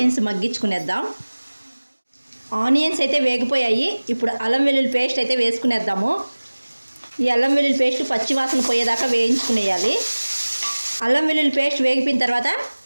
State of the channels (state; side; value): inverted; both; correlation -1.00